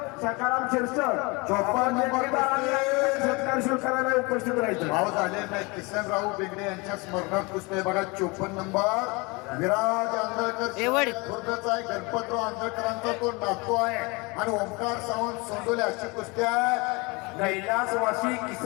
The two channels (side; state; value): right; quieter; 26.8 dB